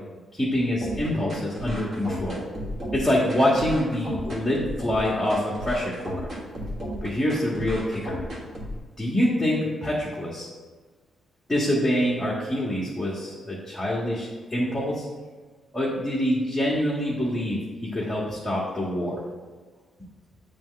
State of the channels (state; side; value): normal; both; correlation 0.81